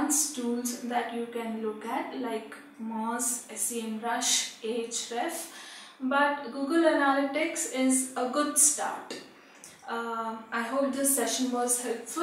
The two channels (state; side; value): identical; both; correlation 1.00